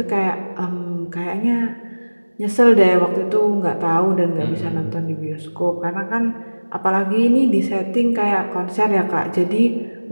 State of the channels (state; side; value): inverted; both; correlation -1.00